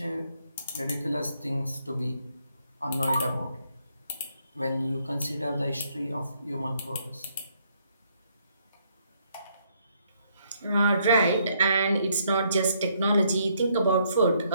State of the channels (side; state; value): both; inverted; correlation -0.71